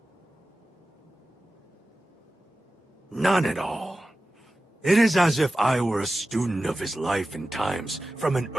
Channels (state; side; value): normal; both; correlation 0.95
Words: None at all. It is as if I were a student of his life and times from an